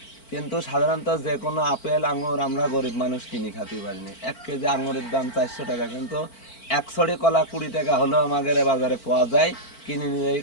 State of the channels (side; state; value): right; late; 4.4 ms